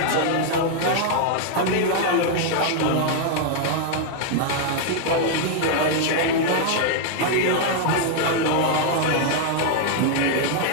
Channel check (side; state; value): both; different; correlation 0.00